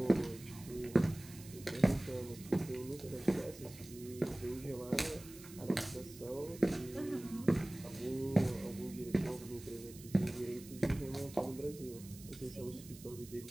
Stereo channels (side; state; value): right; noise; hiss, 17 dB below the sound